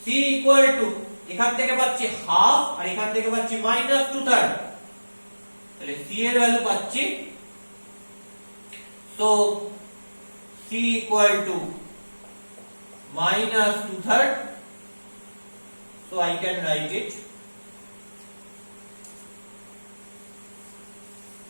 c equal to এখান থেকে পাচ্ছি হাফ আর এখান থেকে পাচ্ছি মাইনাস 2/3। তাহলে c এর ভ্যালু পাচ্ছি so c equal to minus 2/3। so I can write it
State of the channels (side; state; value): both; inverted; correlation -1.00